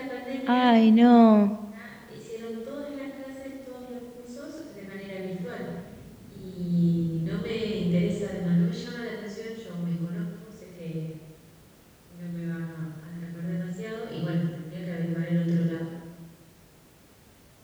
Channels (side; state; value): both; identical; correlation 1.00